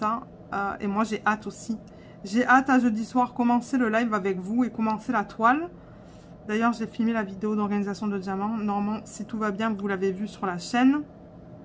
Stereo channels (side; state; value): both; identical; correlation 1.00